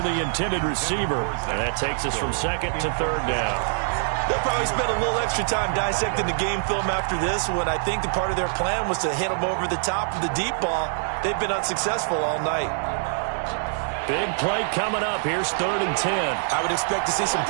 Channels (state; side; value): silent; left; digital silence